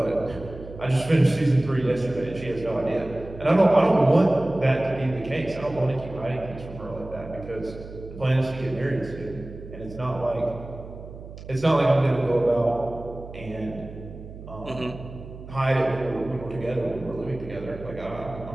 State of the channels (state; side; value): noise; right; hum, 14 dB below the sound